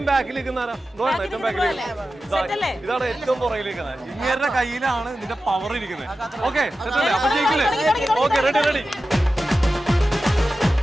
ബാക്കിലിരിക്കുന്ന? ഏറ്റവും ബാക്കിൽ ഇതാണ് ഏറ്റവും പുറകിലിരിക്കുന്നത്. ഇങ്ങേരുടെ കയ്യിലാണ് ഇതിന്റെ പവർ ഇരിക്കുന്നത്. ഓക്കെ അപ്പൊ ജയിക്കില്ലേ? Okay ready.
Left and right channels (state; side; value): normal; both; correlation 0.93